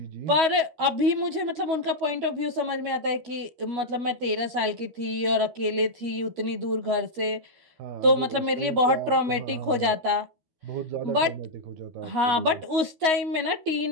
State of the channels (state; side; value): late; left; 13 ms